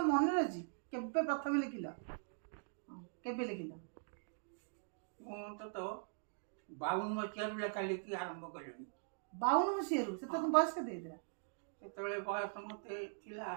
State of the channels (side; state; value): left; silent; digital silence